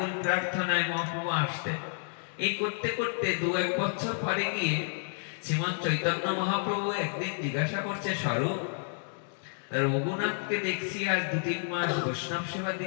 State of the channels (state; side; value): silent; right; 58 dB below the other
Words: প্রার্থনায় মহাপ্রভু আসতেন। এই করতে করতে 2-1 বছর পরে গিয়ে শ্রীমৎ চৈতন্য মহাপ্রভু একদিন জিজ্ঞাসা করছে, স্বরূপ, রঘুনাথকে দেখছি আজ 2-3 মাস বৈষ্ণব সেবা